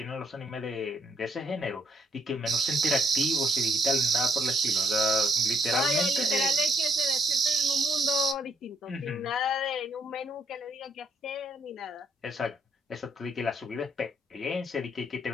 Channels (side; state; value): both; normal; correlation 0.70